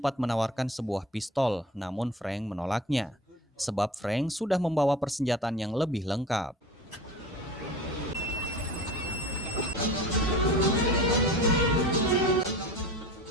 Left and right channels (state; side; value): normal; both; correlation 0.37